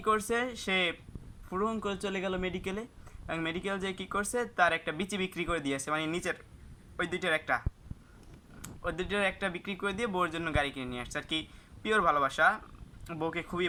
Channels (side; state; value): both; identical; correlation 1.00